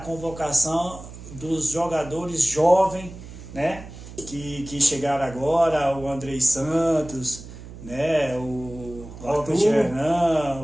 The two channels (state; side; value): noise; right; hum, 15 dB below the sound